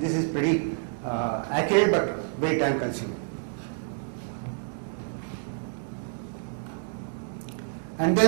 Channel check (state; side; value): silent; left; digital silence